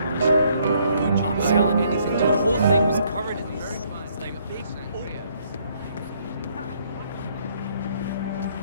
I'm selling anything. The whole thing was covered in these like big Oreos.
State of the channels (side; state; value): both; inverted; correlation -0.68